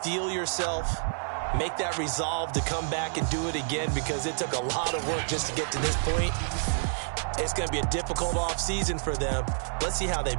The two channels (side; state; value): left; silent; 59 dB below the other